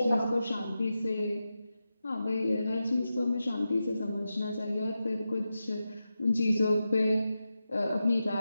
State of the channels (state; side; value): inverted; both; correlation -0.90